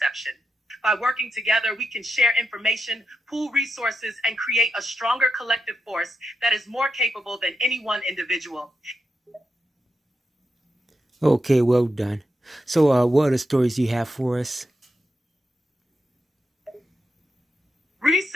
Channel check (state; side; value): normal; both; correlation 0.86